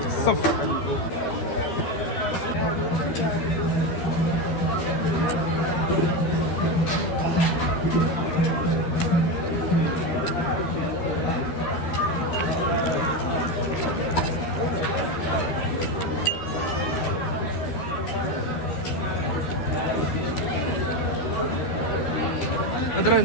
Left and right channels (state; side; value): late; right; 13 ms